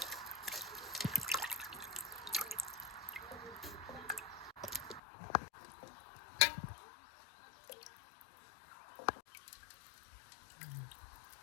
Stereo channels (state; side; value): drops out; right; at 5.0 s